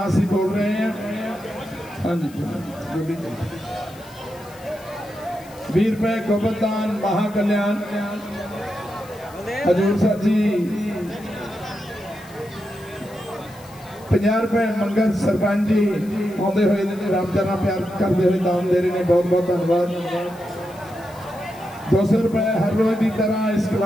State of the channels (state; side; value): noise; left; hiss, 23 dB below the sound